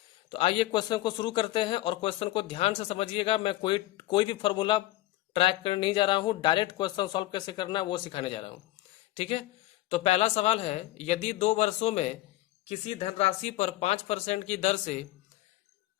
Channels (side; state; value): right; quieter; 17.0 dB